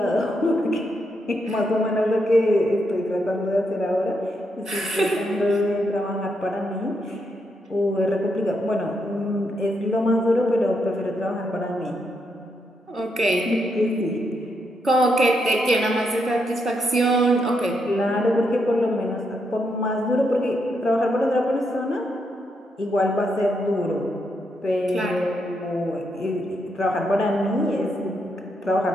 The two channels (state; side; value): normal; both; correlation 0.80